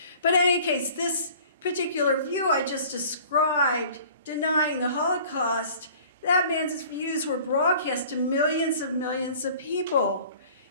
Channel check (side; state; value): both; inverted; correlation -0.48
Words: But in any case, this particular view I just described, denying the Holocaust, that man's views were broadcast to millions of people,